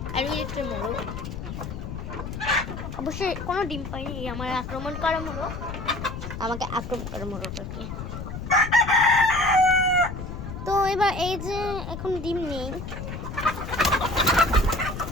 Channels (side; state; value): left; noise; rumble, 8 dB below the sound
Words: আর ওই একটা মোরগ অবশ্যই কোনো ডিম পাইনি, আমার আক্রমণ করা মোরগ, আমাকে আক্রমণ করা মোরগ আর কি। তো এবার এই যে এখন ডিম নেই,